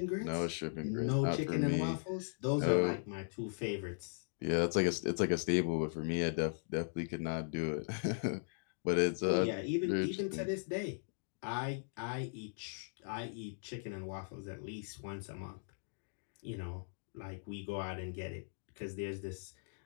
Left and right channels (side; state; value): right; silent; digital silence